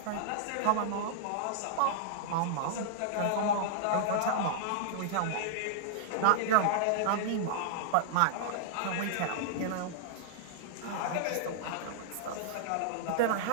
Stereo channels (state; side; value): different; both; correlation -0.01